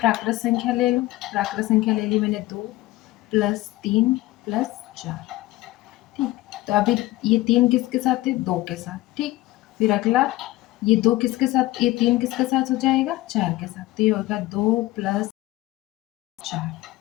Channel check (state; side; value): quieter; right; 17.9 dB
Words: संख्या ले लो। प्राकृत संख्या ले ली मैंने 2 प्लस 3 प्लस 4। ठीक, तो अभी ये 3 किसके साथ है? 2 के साथ। ठीक, फिर अगला ये 2 किसके साथ? ये 3 किसके साथ हो जाएगा? 4 के साथ। तो ये होगा 2 प्लस 4।